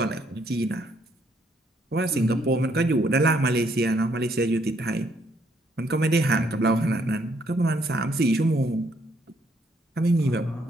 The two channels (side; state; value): both; normal; correlation 0.70